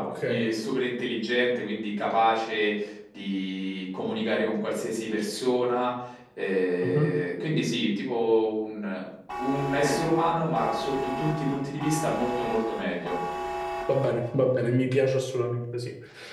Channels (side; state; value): both; identical; correlation 1.00